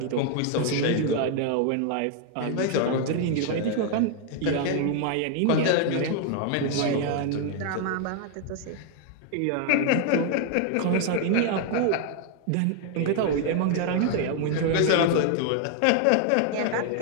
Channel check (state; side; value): different; both; correlation 0.00